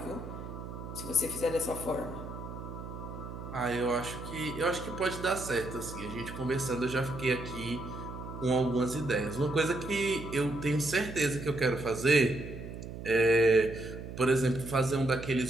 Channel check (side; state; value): right; noise; hum, 10 dB below the sound